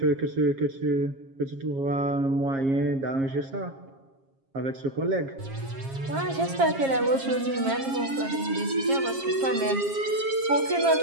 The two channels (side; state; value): left; late; 7.4 ms